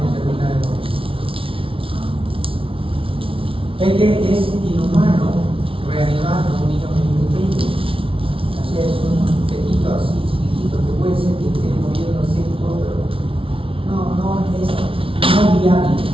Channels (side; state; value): left; late; 0.26 ms